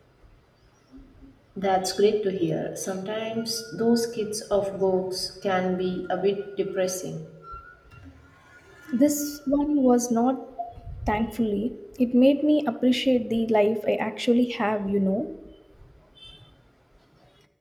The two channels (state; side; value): identical; both; correlation 1.00